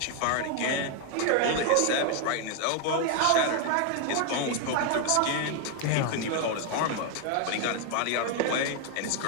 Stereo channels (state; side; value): different; both; correlation 0.00